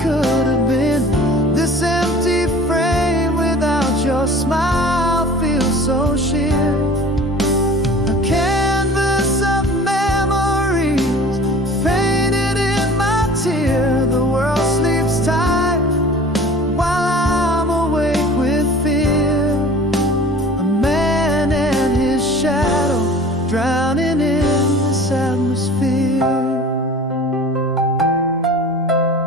could have been. This empty frame without your smile feels so sheer. A canvas of memories painted in my tear. The world sleeps tight while I'm awake with fear. Shadow drowning in this atmosphere.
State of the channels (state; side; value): normal; both; correlation 0.44